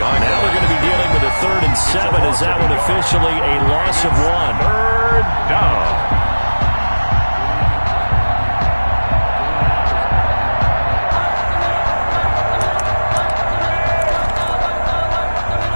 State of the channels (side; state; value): both; inverted; correlation -1.00